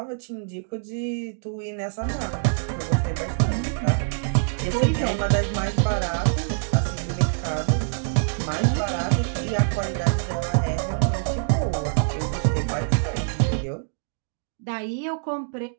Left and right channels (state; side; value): silent; left; digital silence